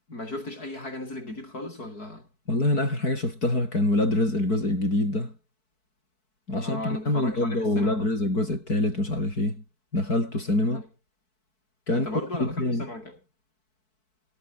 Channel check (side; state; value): right; late; 4.6 ms